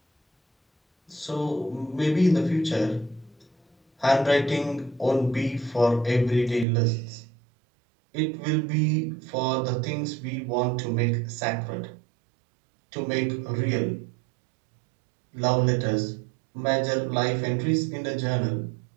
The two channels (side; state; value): left; drops out; at 6.7 s